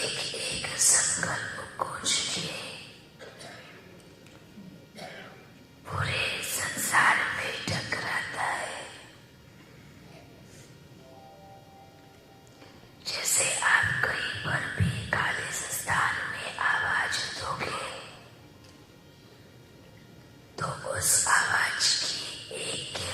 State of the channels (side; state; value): both; identical; correlation 1.00